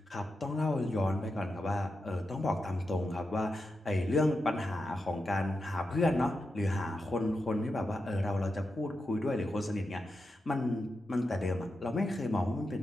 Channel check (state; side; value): normal; both; correlation 0.88